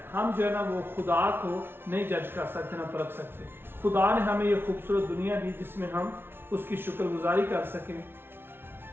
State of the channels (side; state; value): left; late; 0.11 ms